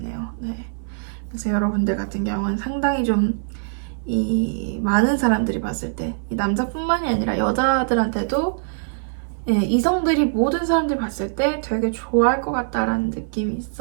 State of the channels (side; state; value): left; silent; 60 dB below the other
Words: 네. 그래서 여러분들 같은 경우는 상당히 좀 많은 사람들이 봤을 때 이 남자뿐만이 아니라 여자들한테도 이성들이 모든 사람들이 봤을 때 되게 좋아할 것 같다라는 느낌이